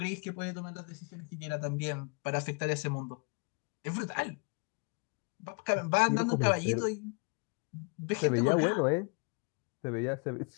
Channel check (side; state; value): right; quieter; 33.6 dB